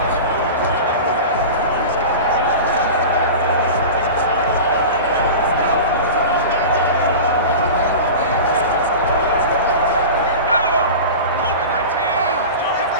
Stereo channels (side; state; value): both; inverted; correlation -0.31